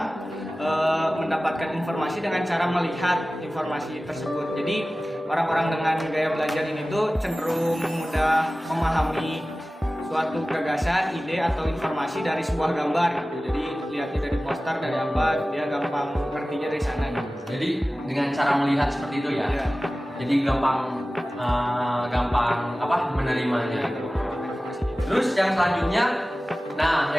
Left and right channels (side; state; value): both; normal; correlation 0.97